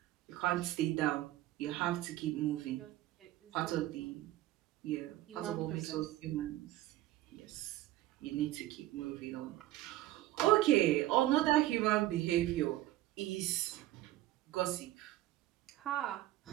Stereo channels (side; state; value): left; quieter; 15.7 dB